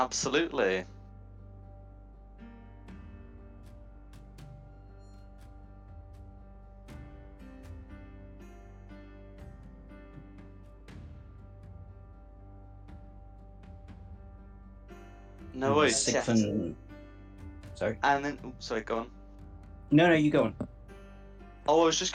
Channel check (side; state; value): both; identical; correlation 1.00